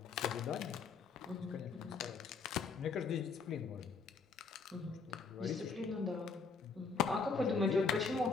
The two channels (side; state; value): right; quieter; 4.9 dB